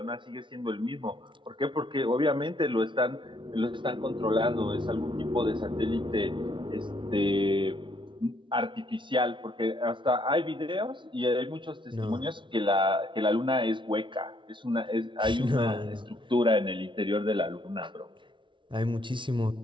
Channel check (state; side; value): late; left; 0.24 ms